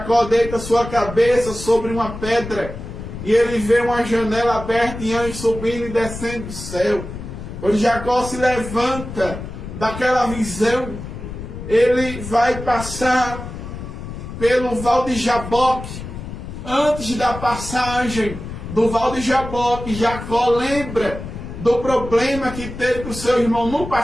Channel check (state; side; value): noise; left; rumble, 10 dB below the sound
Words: deita sua cabeça sobre uma pedra, e ele vê uma janela aberta e anjos subindo e descendo do céu. Quando Jacó se levanta daquela visão, ele vai passar pelo Val de Jaboque. Antes da passagem do Val de Jaboque, Jacó lembra do problema que teve com o seu irmão no